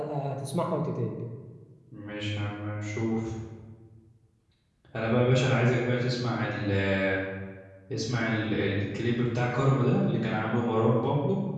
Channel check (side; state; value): both; identical; correlation 1.00